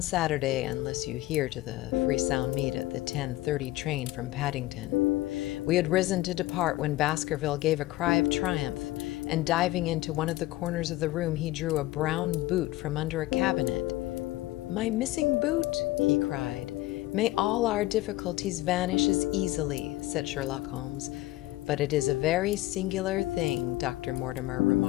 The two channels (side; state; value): right; quieter; 17.5 dB